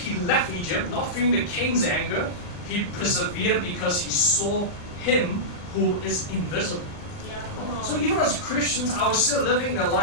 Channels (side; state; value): right; late; 40 ms